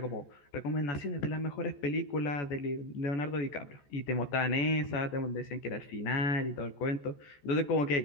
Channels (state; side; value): late; right; 14 ms